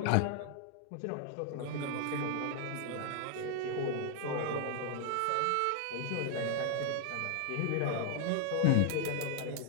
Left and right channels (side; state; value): both; different; correlation 0.00